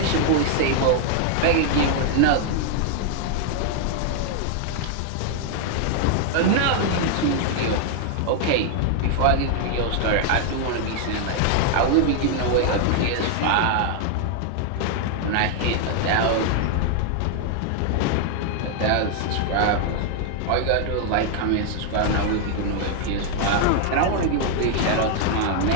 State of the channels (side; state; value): both; different; correlation 0.00